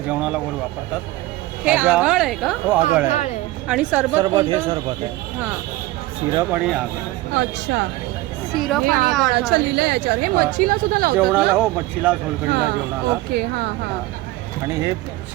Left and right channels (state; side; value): quieter; left; 18.3 dB